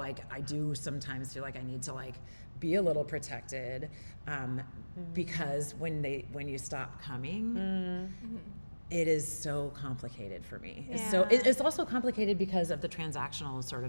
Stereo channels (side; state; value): both; inverted; correlation -1.00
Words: I do sometimes feel like I need to like be a little protected, because when you stop coming, it is so complicated for me. It's also complicated because of the transactional sort